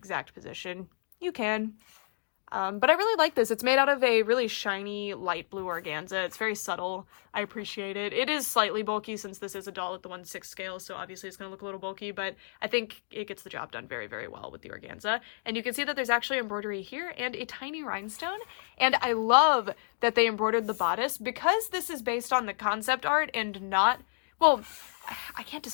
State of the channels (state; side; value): silent; right; digital silence